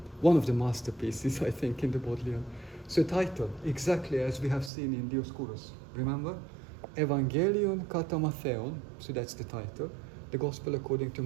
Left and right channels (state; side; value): drops out; left; at 4.7 s